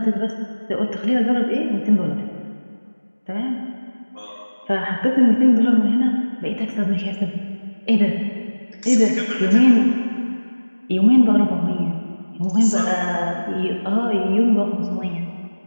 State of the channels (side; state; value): both; inverted; correlation -1.00